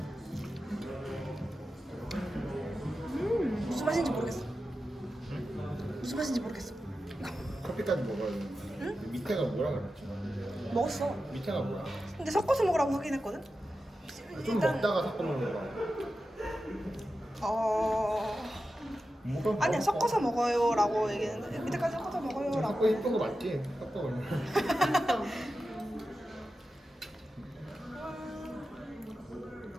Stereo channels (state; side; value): normal; both; correlation 0.92